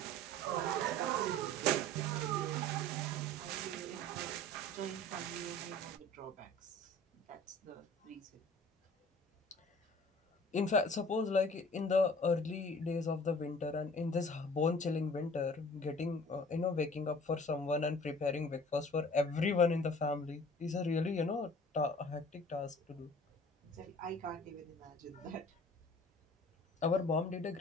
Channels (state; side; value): normal; both; correlation 0.47